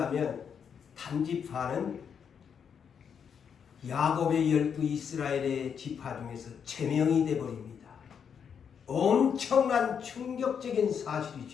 단지파는 야곱의 12 이스라엘의 지파 중에서 제명이 되어버립니다. 엄청난 충격적인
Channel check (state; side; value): quieter; right; 7.3 dB